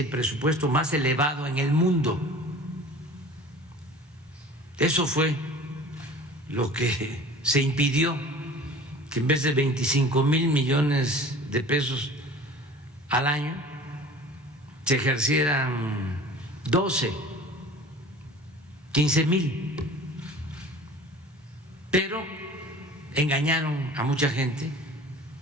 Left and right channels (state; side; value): normal; both; correlation 0.42